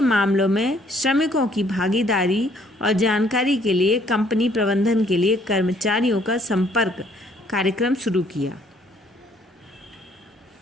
में श्रमिकों की भागीदारी और जानकारी के लिए कंपनी प्रबंधन के लिए कर्मचारियों का संपर्क कार्यक्रम शुरू किया।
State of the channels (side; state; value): both; normal; correlation 0.64